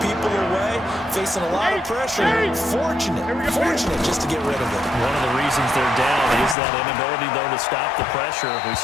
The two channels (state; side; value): drops out; right; at 6.6 s